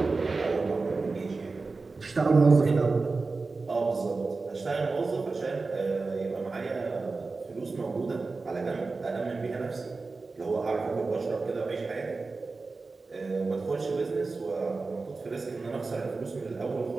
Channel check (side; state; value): left; quieter; 3.9 dB